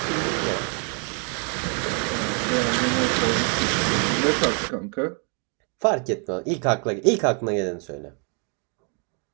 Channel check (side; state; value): left; quieter; 38.7 dB